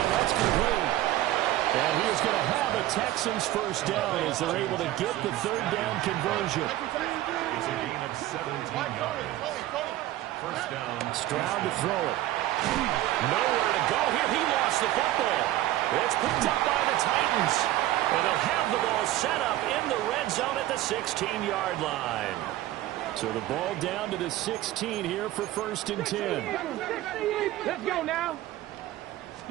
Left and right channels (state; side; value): quieter; left; 14.9 dB